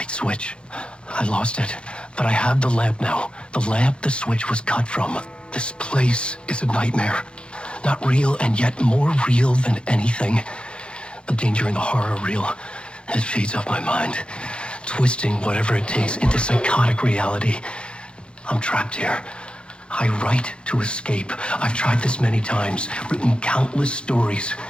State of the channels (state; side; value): late; right; 0.056 ms